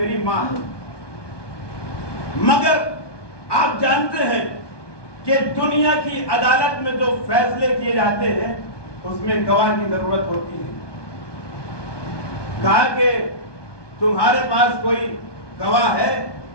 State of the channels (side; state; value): right; late; 1.2 ms